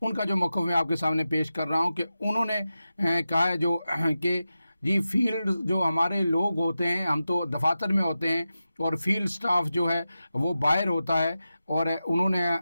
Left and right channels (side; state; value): both; inverted; correlation -0.92